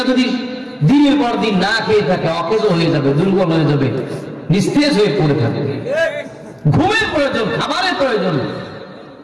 যদি দিনের পর দিন না খেয়ে থাকে অকেজ হয়ে যাবে, দুর্বল হয়ে যাবে, নিস্তেজ হয়ে পড়ে থাকবে। ঘুমের প্রয়োজন, খাবারের প্রয়োজন।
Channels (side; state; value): both; identical; correlation 1.00